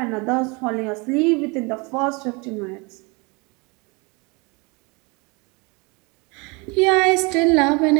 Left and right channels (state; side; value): quieter; left; 28.8 dB